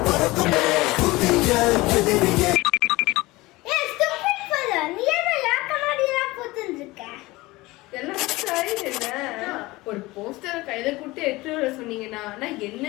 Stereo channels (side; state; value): right; quieter; 20.6 dB